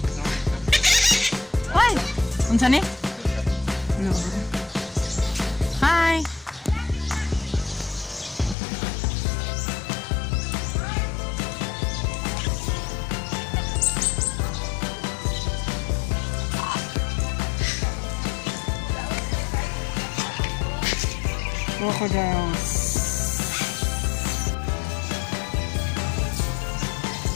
Ay! Unsa ni? Hello. Hi! Crocodiles.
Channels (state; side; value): drops out; right; at 8.6 s